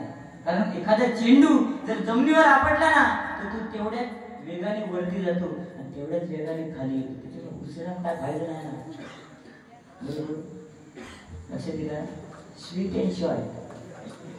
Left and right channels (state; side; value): identical; both; correlation 1.00